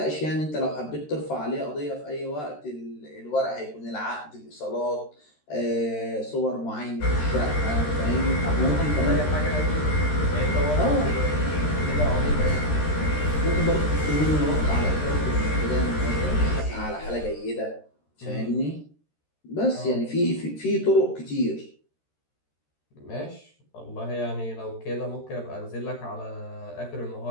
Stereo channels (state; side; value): late; right; 13 ms